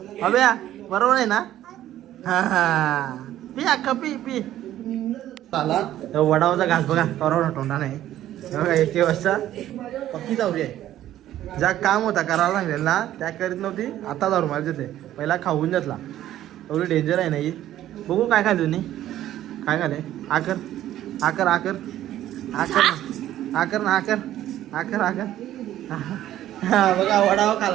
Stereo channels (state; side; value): quieter; left; 12.9 dB